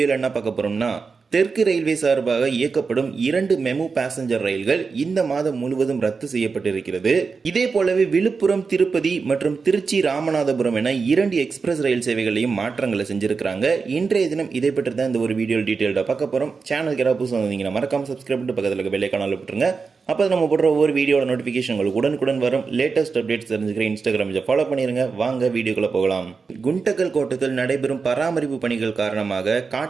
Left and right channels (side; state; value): left; quieter; 4.9 dB